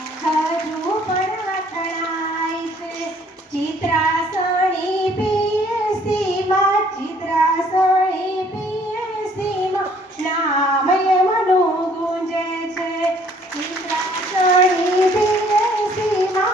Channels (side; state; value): both; normal; correlation 0.60